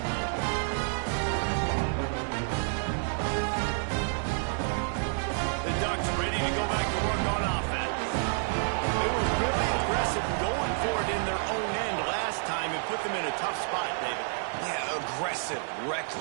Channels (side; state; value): left; silent; 58 dB below the other